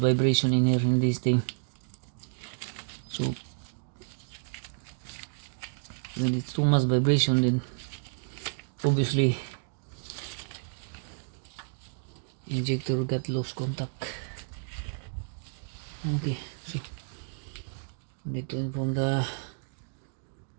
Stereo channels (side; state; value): left; silent; digital silence